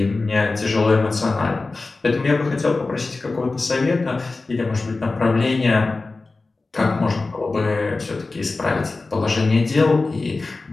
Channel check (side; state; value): right; quieter; 3.6 dB